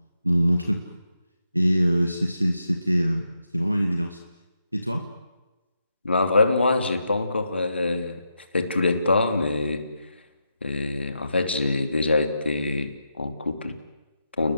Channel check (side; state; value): both; inverted; correlation -0.85